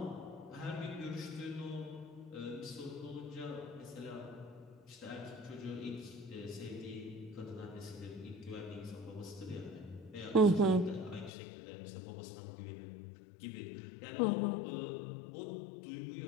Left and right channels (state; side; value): drops out; right; at 11.3 s